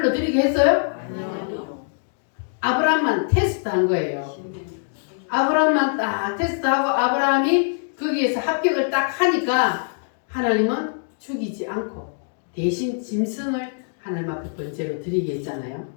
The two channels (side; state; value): right; silent; digital silence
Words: 드리게 했어요? 아브라함만 테스트한 거예요. 아브라함만 딱 테스트하고 아브라함이 거기에서 합격을 딱 하니까 하나님은 죽이지 않고 대신 짐승을 하나님 앞에 번제로 드리게 했잖아요.